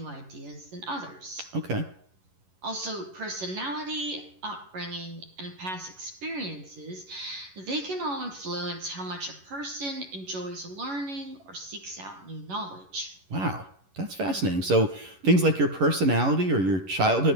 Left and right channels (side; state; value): left; late; 11 ms